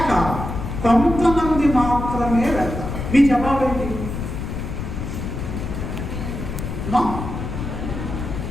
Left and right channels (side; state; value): left; noise; rumble, 5 dB below the sound